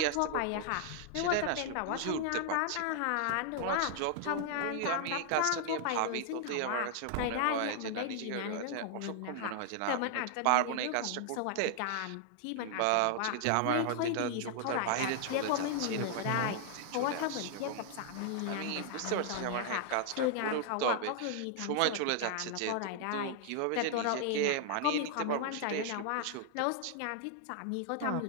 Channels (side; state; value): both; different; correlation 0.00